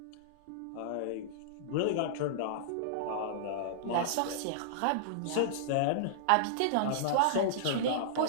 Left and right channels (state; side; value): different; both; correlation -0.02